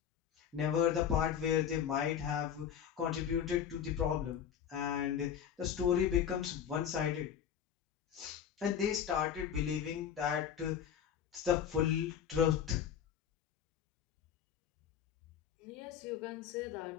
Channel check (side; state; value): right; quieter; 8.7 dB